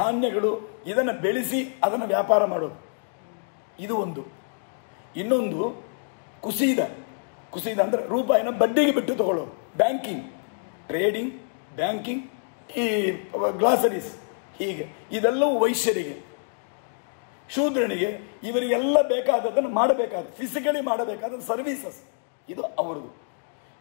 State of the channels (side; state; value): right; silent; digital silence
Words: ಇದನ್ನು ಬೆಳೆಸಿ ಅದನ್ನು ವ್ಯಾಪಾರ ಮಾಡೋದು, ಇದು ಒಂದು. ಇನ್ನೊಂದು ಕುಸಿದ ಅಂದರೆ ರೂಪಾಯಿನ ಬಡ್ಡಿಗೆ ಬಿಟ್ಟು ತಗೊಳ್ಳೋದು, ಬ್ಯಾಂಕಿಂಗ್, ಟ್ರೇಡಿಂಗ್, ಬ್ಯಾಂಕಿಂಗ್, ಈ ಗ್ಲಾಸರೀಸ್, ಹೀಗೆ ಇದೆಲ್ಲವೂ ವೈಶ್ಯರಿಗೆ. ಶೂದ್ರನಿಗೆ ಇವರಿಗೆಲ್ಲ ಬೇಕಾದದ್ದನ್ನು ಮಾಡಬೇಕಾದ ಫಿಸಿಕಲಿ ಮಾಡಬೇಕಾದ ಸರ್ವೀಸಸ್ ಇದು ಅವರದು.